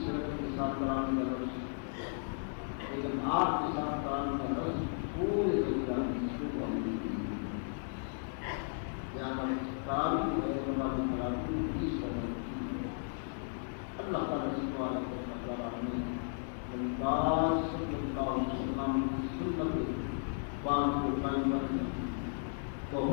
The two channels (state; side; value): silent; right; 54 dB below the other